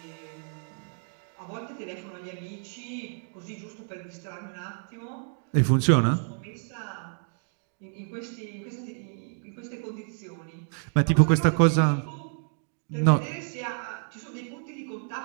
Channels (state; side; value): silent; left; 56 dB below the other